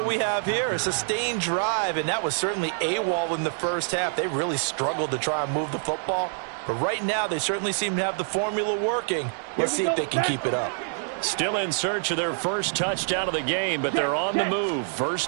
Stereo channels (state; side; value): silent; left; 61 dB below the other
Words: we have here, a sustained drive, and that was certainly AWOL in the first half. They really struggled to try and move the football. But right now, they certainly seem to have the formula working. Let's see if they can keep it up. Still in search of their first touchdown of the game, but they're on the move.